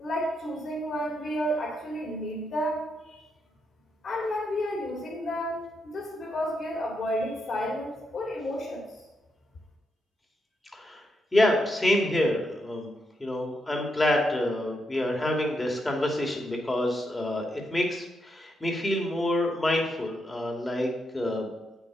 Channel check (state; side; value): normal; both; correlation 0.82